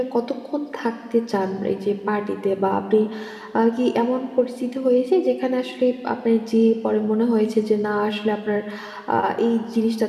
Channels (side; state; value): both; identical; correlation 1.00